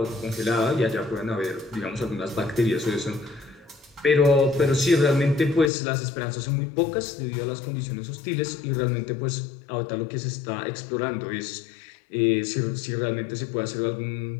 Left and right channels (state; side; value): drops out; right; at 5.7 s